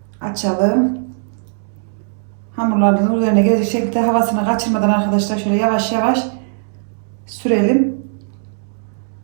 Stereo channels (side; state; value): left; silent; digital silence